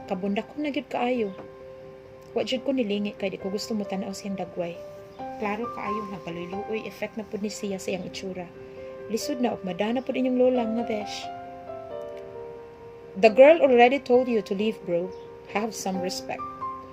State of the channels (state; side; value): identical; both; correlation 1.00